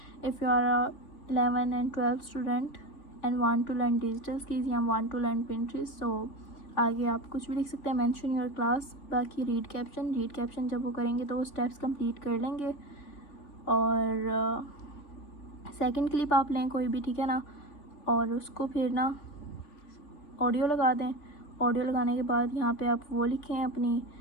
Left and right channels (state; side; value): late; right; 3.4 ms